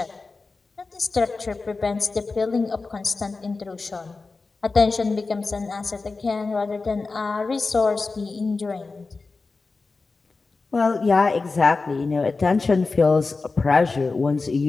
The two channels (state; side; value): quieter; right; 4.0 dB